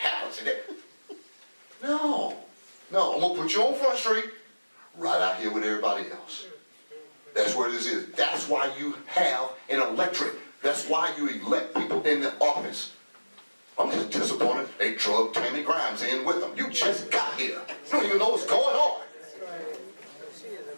in it. No, I'm gonna put you on Front Street, right out here with everybody else. That's where this is. That's why you have an electorate. That's why you elect people in the office. I'm just disappointed they drug Tammy Grimes in with them. You just got here. You don't even know what's going on. She is a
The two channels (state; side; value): inverted; both; correlation -1.00